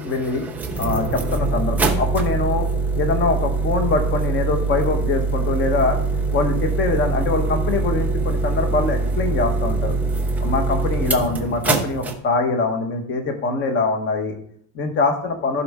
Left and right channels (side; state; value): both; normal; correlation 0.25